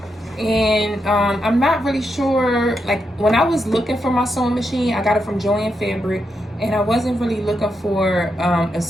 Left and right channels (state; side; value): normal; both; correlation 0.83